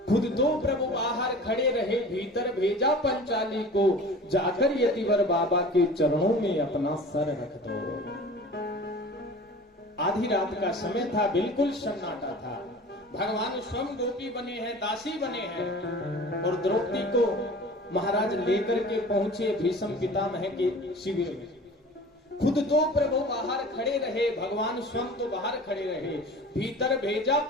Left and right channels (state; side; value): normal; both; correlation 0.41